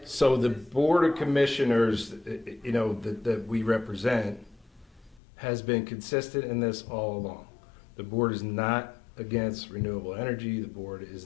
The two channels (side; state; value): right; drops out; at 5.2 s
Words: So the Board of Commissioners, that we represent has been consistent in this all along. The board is not against renewable energy. The board is